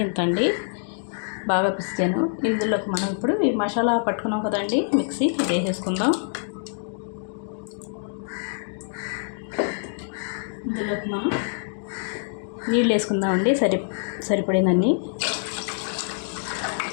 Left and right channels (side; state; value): right; silent; digital silence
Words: బాగా పిసికాను. ఇందులోకి మనం ఇప్పుడు ఈ మసాలా పట్టుకున్నాం కదండి, మిక్సీ ఇది వేసేసుకుందాం. ఇందులోకి మనం నీళ్ళు వేసుకుందామండి, సరిపడినన్ని.